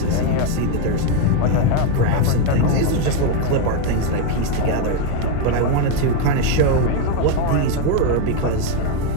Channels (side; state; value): both; different; correlation 0.01